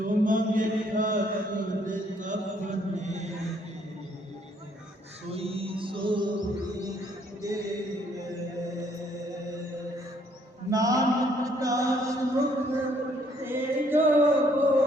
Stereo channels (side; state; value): both; normal; correlation 0.66